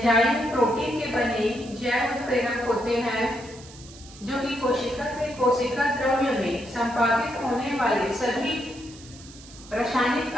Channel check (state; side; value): noise; right; hiss, 19 dB below the sound